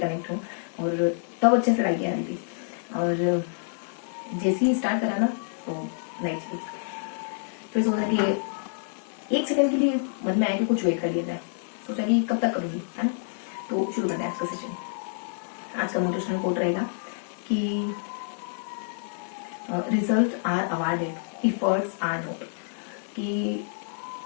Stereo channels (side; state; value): right; silent; digital silence